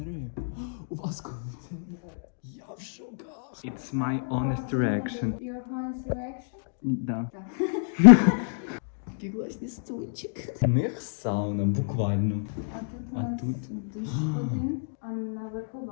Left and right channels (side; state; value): right; silent; digital silence